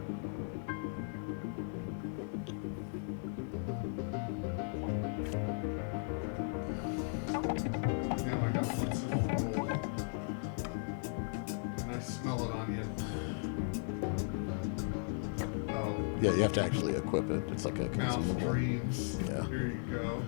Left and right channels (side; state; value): right; silent; 53 dB below the other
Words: Yeah, you have to actually equip it. It's like a consumable. Mouth dreams. Yeah. Here you go.